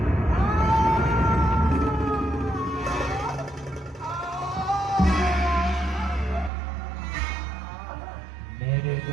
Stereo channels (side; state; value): left; drops out; at 6.5 s